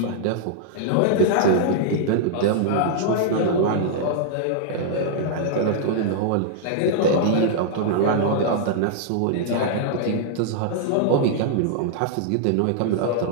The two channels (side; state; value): both; different; correlation -0.01